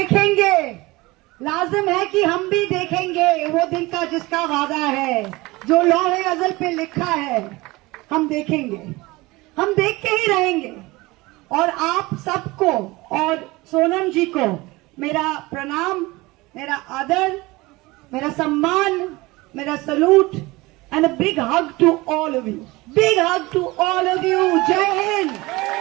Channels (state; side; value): quieter; left; 21.6 dB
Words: लाजिम है कि हम भी देखेंगे वो दिन का जिसका वादा है, जो लौहे अज़ल पे लिखा है। हम देखेंगे, हम देख के ही रहेंगे। और आप सबको और सोनम जी को मेरा प्रणाम, मेरा आदर, मेरा सम्मान, मेरा salute and a big hug to all of you. Big hug to all of you. Jai Hind.